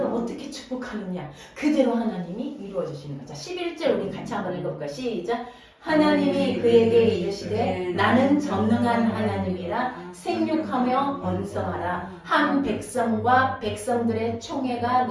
어떻게 축복하느냐 그대로 하나님이 이루어 주시는 거죠. 11절 우리 같이 한번 읽어볼까요? 시작. 하나님이 그에게 이르시되 나는 전능한 하나님이라 생육하며 번성하라. 한 백성과 백성들의 총회가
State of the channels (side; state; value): both; identical; correlation 1.00